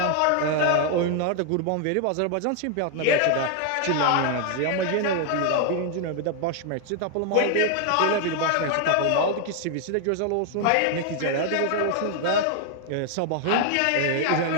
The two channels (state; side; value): different; both; correlation 0.00